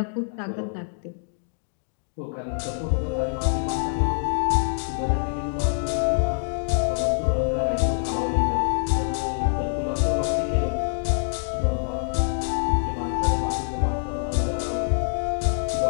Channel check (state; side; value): silent; right; digital silence